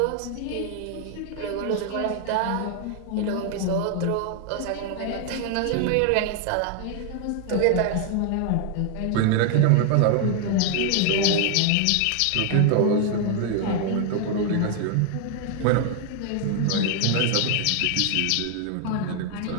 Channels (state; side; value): different; both; correlation 0.00